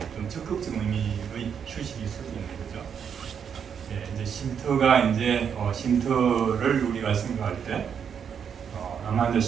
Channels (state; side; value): quieter; left; 7.5 dB